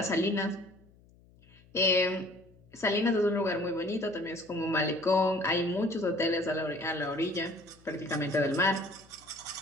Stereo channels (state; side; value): noise; left; hum, 28 dB below the sound